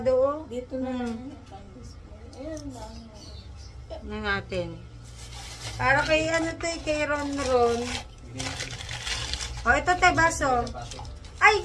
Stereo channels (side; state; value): both; identical; correlation 1.00